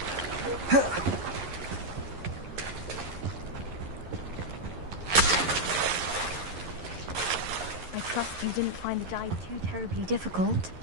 You didn't find the dive too terribly difficult.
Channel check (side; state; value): left; late; 11 ms